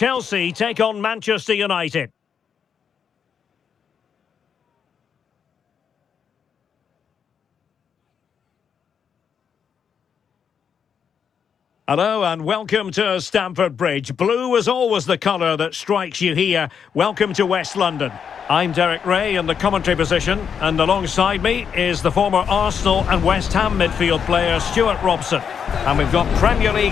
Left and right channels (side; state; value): right; quieter; 7.2 dB